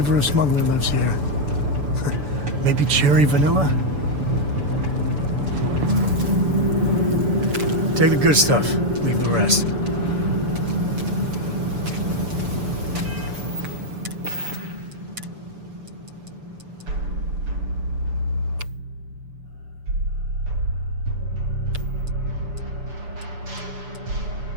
of smuggler lives here. Maybe cherry vanilla? Take the good stuff, leave the rest.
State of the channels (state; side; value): late; left; 6.9 ms